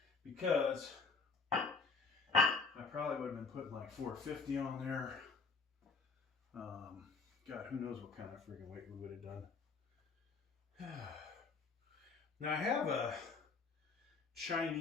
because I probably would have been putting like 450 on there. God, who knows what kind of freaking weight we would have done. Now I have a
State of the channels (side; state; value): right; quieter; 4.7 dB